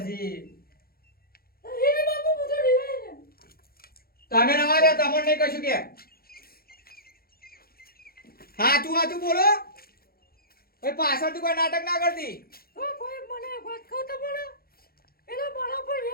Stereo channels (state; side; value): late; right; 0.44 ms